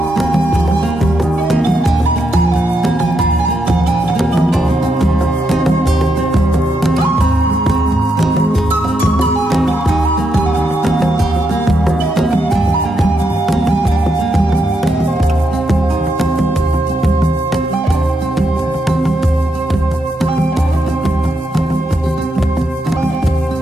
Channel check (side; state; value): both; normal; correlation 0.81